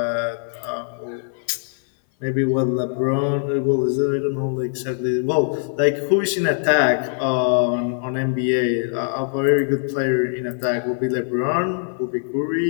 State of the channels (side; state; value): right; silent; 58 dB below the other